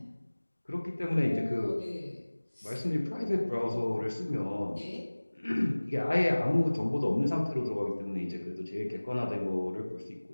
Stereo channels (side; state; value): both; inverted; correlation -1.00